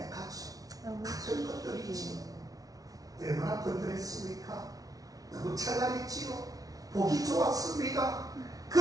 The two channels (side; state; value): left; late; 0.18 ms